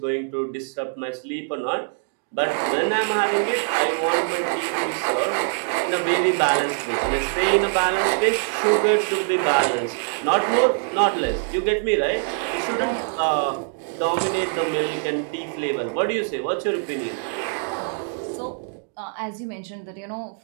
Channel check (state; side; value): silent; left; digital silence